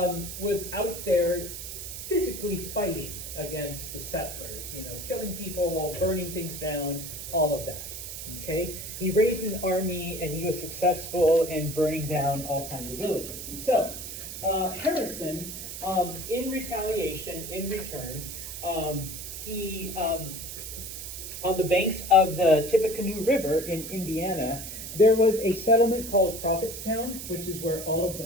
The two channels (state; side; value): noise; right; hiss, 8 dB below the sound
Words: was out there physically fighting against the settlers, killing people, burning things down, all of that. Okay? He raised an army and he was successful in burning down all kinds of villages. So, Harrison, in retaliation, in return, he, on the banks of the Tippecanoe River in Indiana, there was a settlement called Prophetstown, which is where all of the